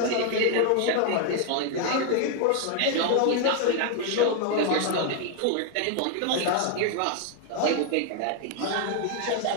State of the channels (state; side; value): different; both; correlation 0.00